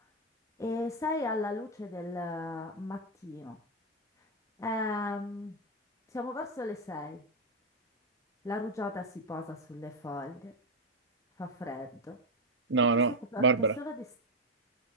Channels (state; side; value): normal; both; correlation 0.04